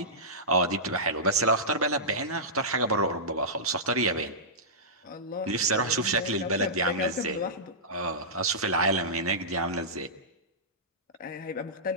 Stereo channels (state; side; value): normal; both; correlation -0.17